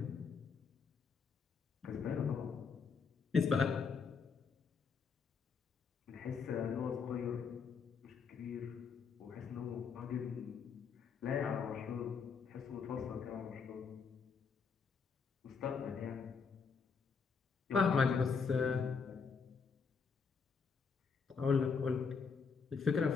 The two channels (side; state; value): right; quieter; 5.6 dB